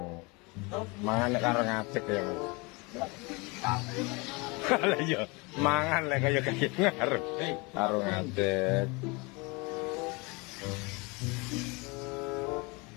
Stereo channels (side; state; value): right; quieter; 27.5 dB